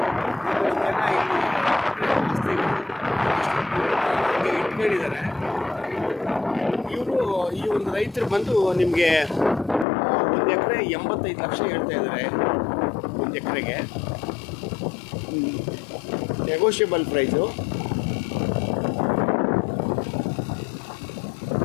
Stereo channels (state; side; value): drops out; right; at 9.9 s